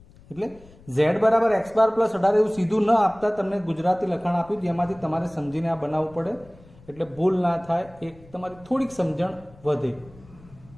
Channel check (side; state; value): left; noise; rumble, 24 dB below the sound